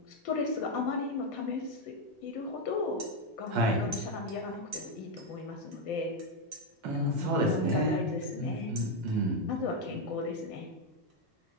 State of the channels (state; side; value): normal; both; correlation 0.04